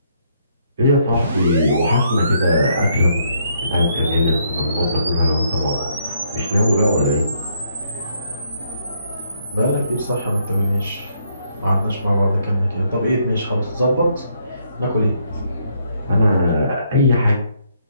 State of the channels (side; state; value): both; inverted; correlation -0.72